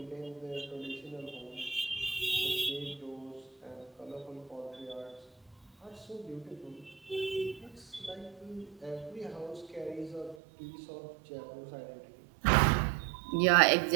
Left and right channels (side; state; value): left; drops out; at 10.4 s